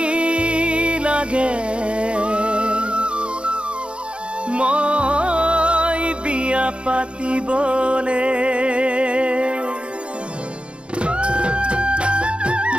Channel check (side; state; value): left; late; 0.057 ms